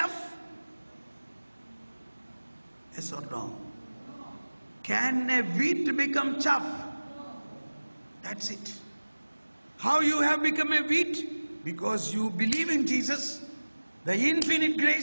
Yes or no? Can a wheat become chaff? That's it. How you have become a wheat? Because you believe in Jesus. The infinite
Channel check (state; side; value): inverted; both; correlation -1.00